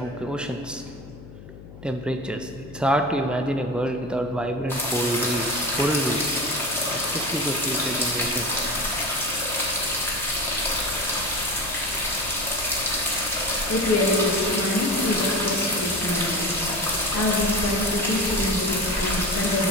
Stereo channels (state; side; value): noise; left; hum, 16 dB below the sound